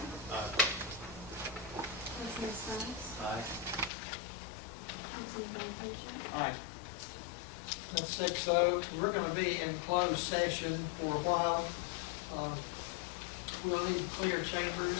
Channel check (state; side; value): drops out; right; at 3.9 s